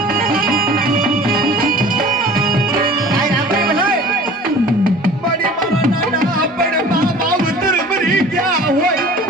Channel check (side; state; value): both; normal; correlation 0.45